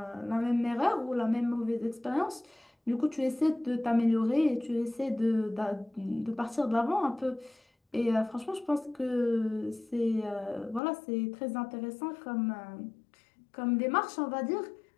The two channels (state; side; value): drops out; right; at 10.8 s